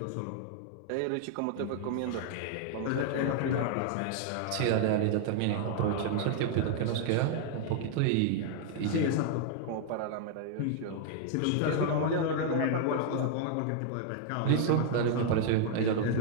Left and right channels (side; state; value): both; different; correlation 0.00